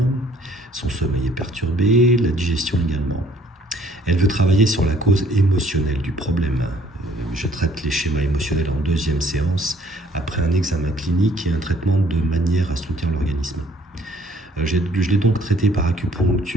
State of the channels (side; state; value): both; normal; correlation 0.61